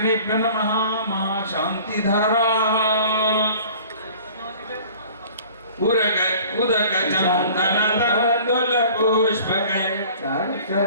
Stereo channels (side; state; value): both; inverted; correlation -0.47